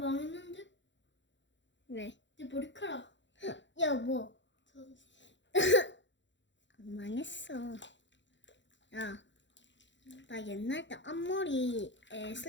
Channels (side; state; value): right; late; 0.53 ms